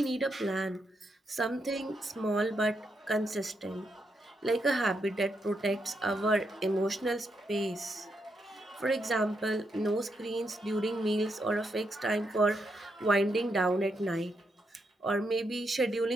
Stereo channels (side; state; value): both; normal; correlation 0.81